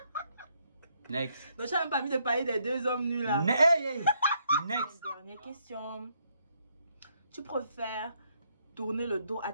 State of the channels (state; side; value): inverted; both; correlation -0.73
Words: Next. Donc tu n'as même pas envie de parler des 2 hommes nus là. Next. Dernière question. Tu préfères tourner le dos à